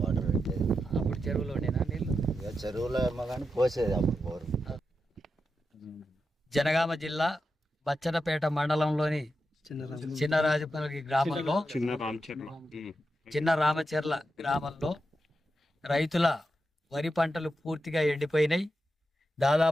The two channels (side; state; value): both; normal; correlation 0.88